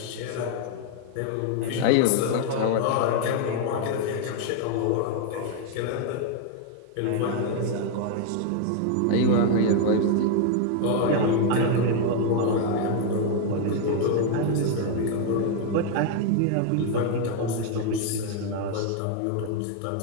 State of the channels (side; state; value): both; different; correlation 0.00